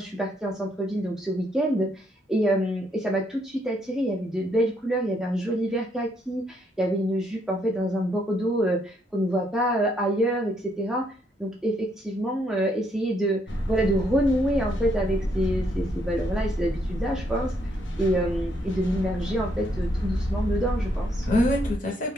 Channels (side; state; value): both; normal; correlation 0.73